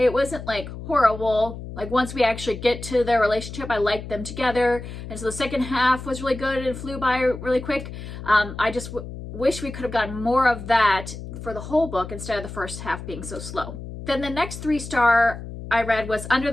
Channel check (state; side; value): noise; left; hum, 10 dB below the sound